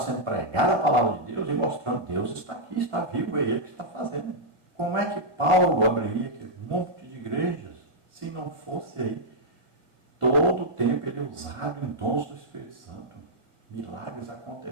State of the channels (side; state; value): left; late; 1.9 ms